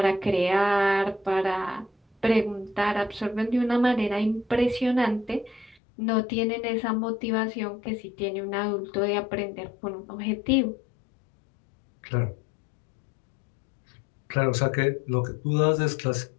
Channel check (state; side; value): drops out; right; at 5.8 s